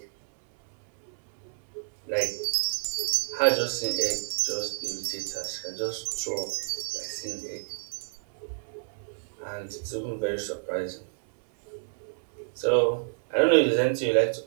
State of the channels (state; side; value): silent; left; 59 dB below the other